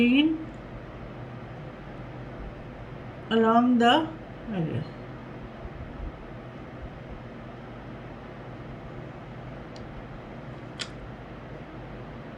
along the edges.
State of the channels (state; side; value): identical; both; correlation 1.00